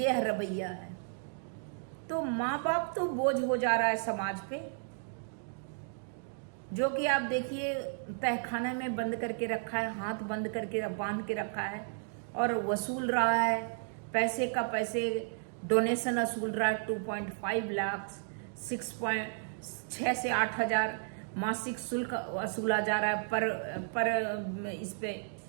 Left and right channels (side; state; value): left; silent; digital silence